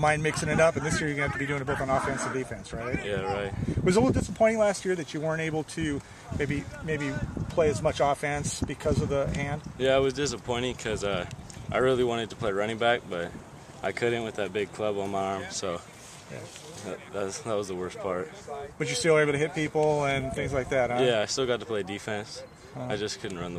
mind mixing it up, and this year you're going to have to be doing it both on offense and defense, right? Yeah, right. Was it a little disappointing last year that you weren't able to maybe play as much offense because of the hand? Yeah, it was disappointing because I really wanted to play running back, but I couldn't with that big club on my arm, so that was the worst part. But you're still able to hit people and things like that, huh? Yeah, I still got to play defense. I just couldn't run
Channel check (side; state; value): both; identical; correlation 1.00